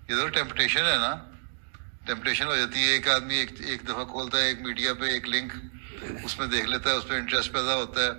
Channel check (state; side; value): silent; left; digital silence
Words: یہ تو ٹیمپٹیشن ہے نا، ٹیمپٹیشن ہو جاتی ہے. ایک آدمی ایک دفعہ کھولتا ہے ایک میڈیا پہ ایک لنک، اس میں دیکھ لیتا ہے، اس پہ انٹرسٹ پیدا ہوتا ہے،